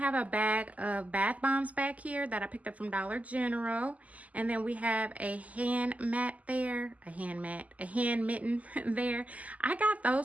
a bag of bath bombs back here that I picked up from Dollar General. And then we have a hand mat there, a hand mitten there. I got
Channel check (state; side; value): late; left; 0.074 ms